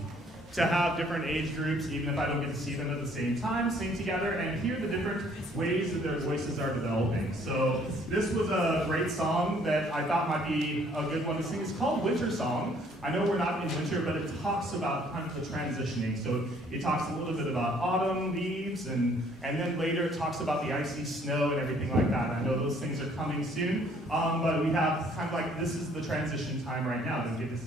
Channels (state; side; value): normal; both; correlation 0.61